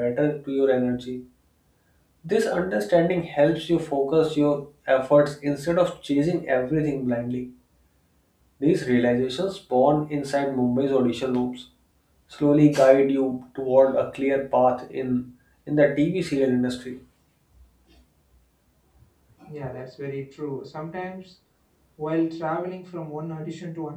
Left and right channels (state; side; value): identical; both; correlation 1.00